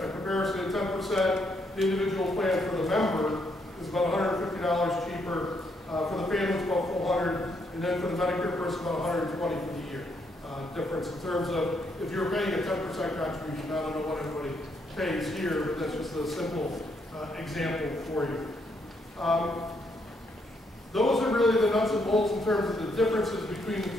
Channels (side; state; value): both; normal; correlation 0.75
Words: comparison, 10%, the individual plan for the member is about $150 cheaper. For the family, it's about $400, and then for the Medicare person, about $120 for the year. Difference in terms of if you're paying a 10% contribution. I don't know what everybody pays here, but that's just a simple example for you. Those are really the nuts and bolts in terms of the differences between the